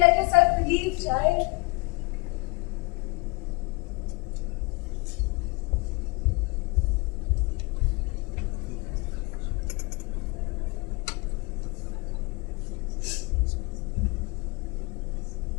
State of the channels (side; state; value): right; quieter; 26.0 dB